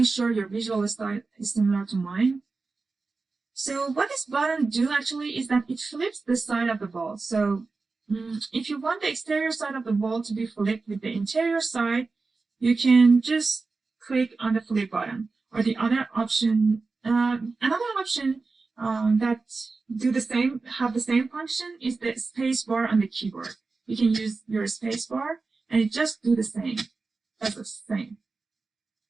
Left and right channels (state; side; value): quieter; left; 4.0 dB